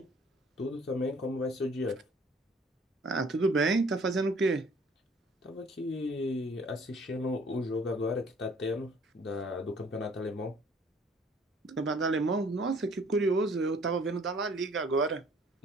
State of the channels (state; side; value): normal; both; correlation 0.56